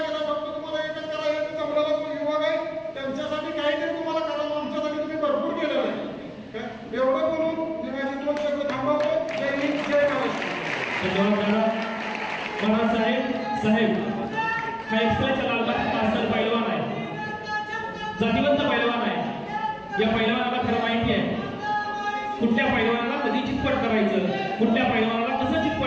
केलं. फक्त तुम्हाला एकच करायचं जमलेला युवक आहे त्यांच्यासाठी काहीतरी तुम्हाला करावं. आमच्यासाठी तुम्ही भरपूर केलेलं आहे. एवढं बोलून मी माझी 2 शब्द थांबवतो. जय हिंद जय महाराष्ट्र. साहेब हा एक्सप्रेसचा लालबाग पार्सल पैलवान आहे, जातीवंत पैलवान आहे. या पैलवानाला खरं माहिती आहे कुठल्या पैलवानाला कधी चितपट करायचं, कुठल्या पैलवानाला कसं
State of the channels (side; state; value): both; identical; correlation 1.00